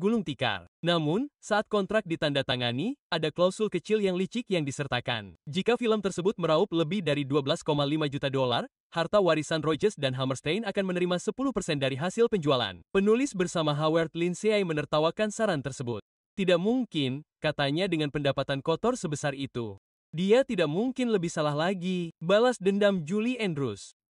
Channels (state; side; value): identical; both; correlation 1.00